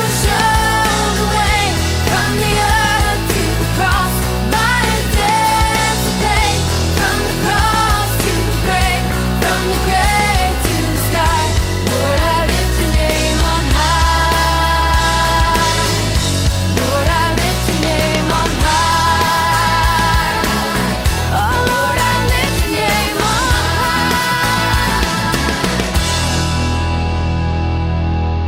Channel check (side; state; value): both; identical; correlation 1.00